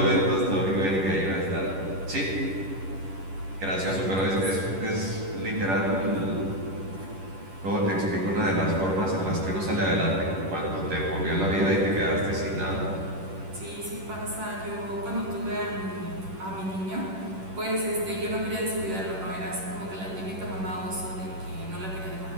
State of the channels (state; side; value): late; left; 10 ms